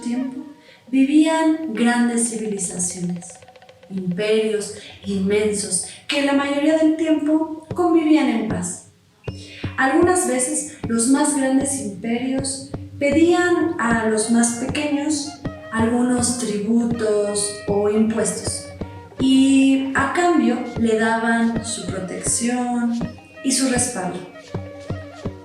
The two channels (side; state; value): both; identical; correlation 1.00